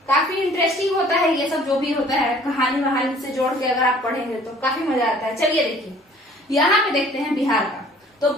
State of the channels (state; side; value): normal; both; correlation 0.53